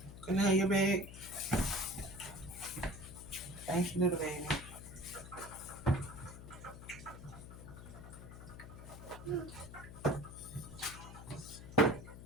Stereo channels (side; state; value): left; noise; hum, 13 dB below the sound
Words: Can I have your bag? Thank you, little baby.